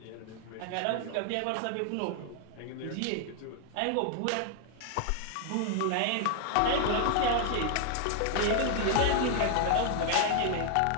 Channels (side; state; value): both; different; correlation 0.00